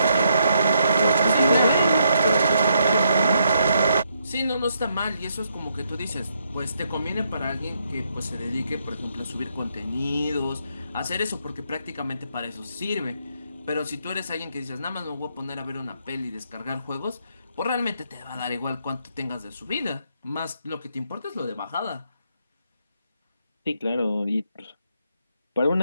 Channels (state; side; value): inverted; both; correlation -0.76